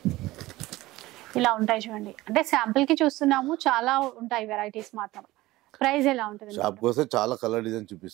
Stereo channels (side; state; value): left; quieter; 18.2 dB